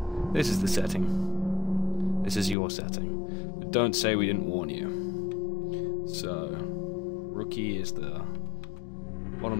this is the setting. This is your setting. But don't say we didn't warn you. So, Rookie is the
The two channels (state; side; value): drops out; right; at 2.6 s